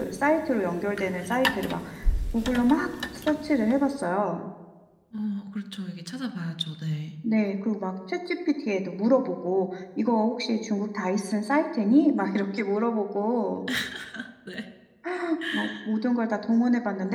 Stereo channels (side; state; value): both; identical; correlation 1.00